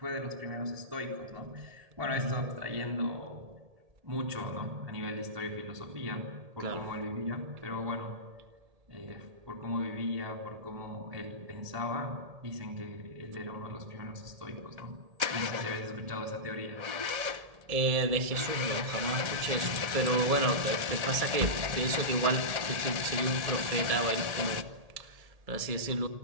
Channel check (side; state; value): left; late; 1.8 ms